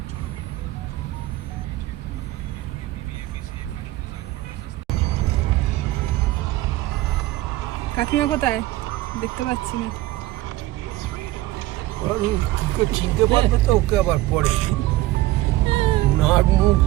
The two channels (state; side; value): quieter; left; 17.1 dB